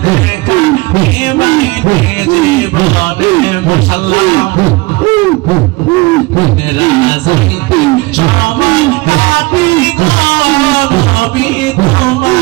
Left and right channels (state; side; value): quieter; left; 23.3 dB